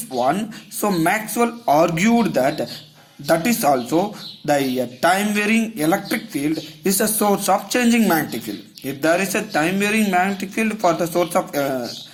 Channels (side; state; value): both; identical; correlation 1.00